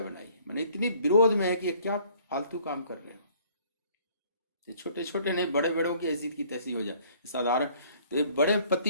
बनाई। मैंने इतनी विरोध में है कि ये क्या फालतू काम कर रहे हो। ये छोटे छोटे नहीं, बड़े बड़ों की ऐसी की तैसी हो जाए साधारण। तो ये बड़े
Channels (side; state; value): both; inverted; correlation -0.58